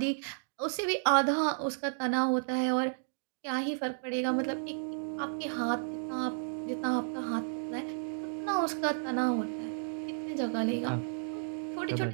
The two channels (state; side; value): silent; left; digital silence